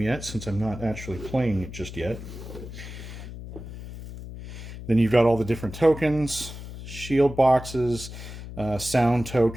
yet since I'm not actually playing it just yet. Then you've got all the different tokens, shield boxes, sound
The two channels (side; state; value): left; noise; hum, 11 dB below the sound